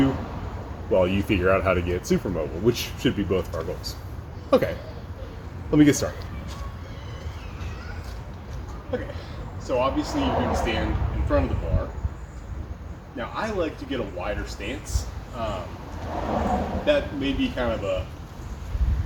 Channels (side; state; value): both; identical; correlation 1.00